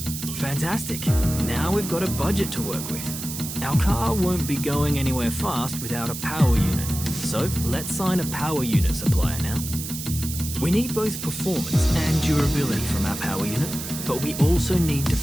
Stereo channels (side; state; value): right; noise; hiss, 8 dB below the sound